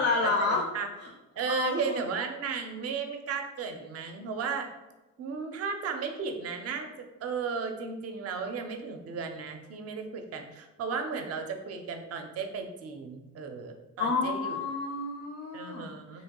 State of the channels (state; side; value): normal; both; correlation 0.05